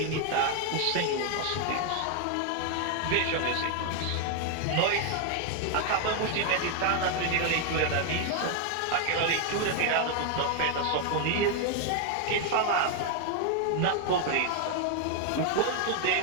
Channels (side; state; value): both; different; correlation 0.00